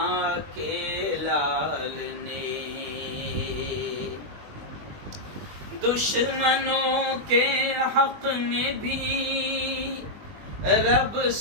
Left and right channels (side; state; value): left; late; 20 ms